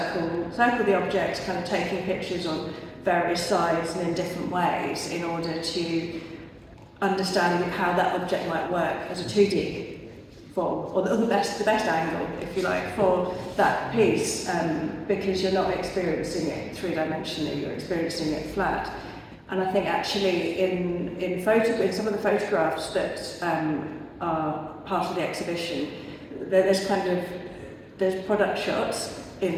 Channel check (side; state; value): both; identical; correlation 1.00